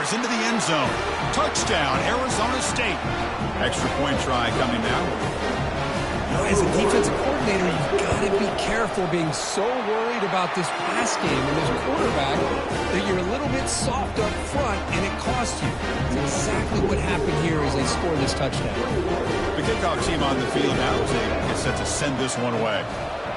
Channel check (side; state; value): both; identical; correlation 1.00